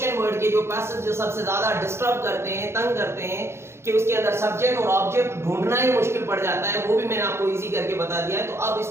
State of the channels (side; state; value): left; late; 0.12 ms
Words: वर्ड के जो पैसेज जो सबसे ज्यादा डिस्टर्ब करते हैं, तंग करते हैं, कि उसके अंदर सब्जेक्ट और ऑब्जेक्ट ढूंढना ही मुश्किल पड़ जाता है, वो भी मैंने आपको इजी करके बता दिया है। तो अब